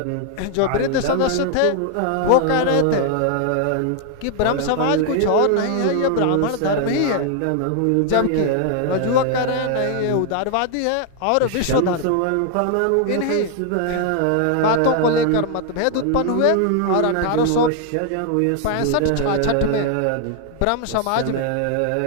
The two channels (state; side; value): different; both; correlation 0.00